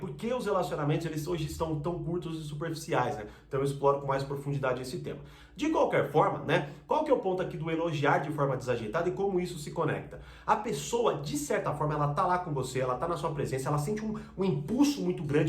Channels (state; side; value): identical; both; correlation 1.00